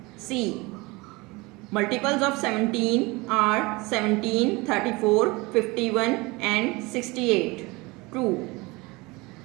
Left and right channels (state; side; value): quieter; left; 24.1 dB